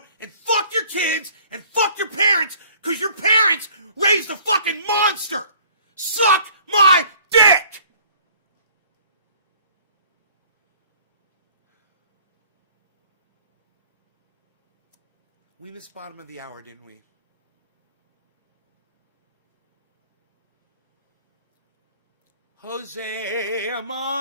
and fuck your kids, and fuck your parents, because your parents raised a fucking monster! Suck my dick! We missed bottom of the hour, didn't we? Jose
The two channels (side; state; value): both; inverted; correlation -0.53